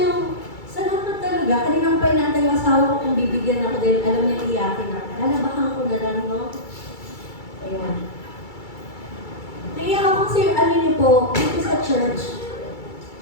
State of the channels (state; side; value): late; right; 2.3 ms